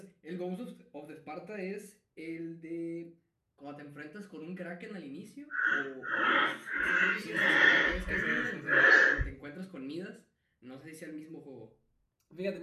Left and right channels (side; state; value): both; identical; correlation 1.00